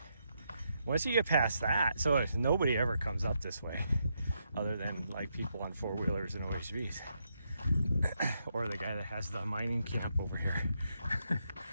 once you get past that, so nobody ever comes up this way other than like people on four-wheelers and OHVs or the guy that has the mining camp over here.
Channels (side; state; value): both; inverted; correlation -0.80